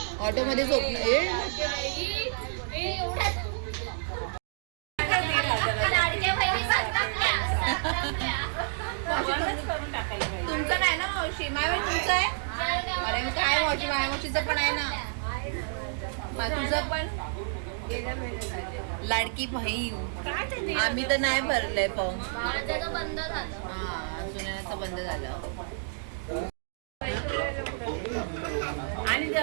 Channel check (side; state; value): left; silent; digital silence